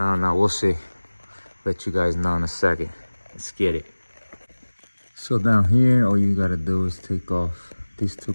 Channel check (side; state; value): both; inverted; correlation -1.00